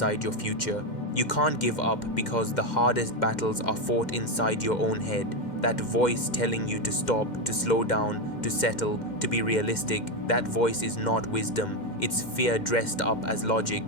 your future. You can't give up because the hardest battles are fought inside your own head. That voice telling you to stop, to slow down, to settle, to be realistic, that voice is not wisdom. It's fear dressed up as logic.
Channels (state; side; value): late; right; 2.1 ms